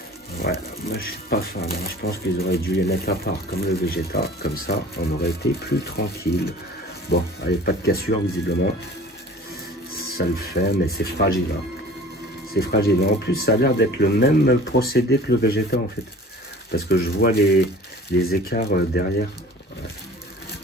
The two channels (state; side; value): normal; both; correlation 0.45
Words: Ouais, moi je suis pas fan. Hein. Je pense qu'ils auraient dû les mettre à part comme le Vegeta. Comme ça, on aurait été plus tranquille. Bon, allez, pas de cassure visiblement. Ça le fait, mais c'est fragile. Hein. C'est fragile. En plus, ça a l'air d'être le même procédé que le Vegeta en fait. Parce que je vois les écarts derrière.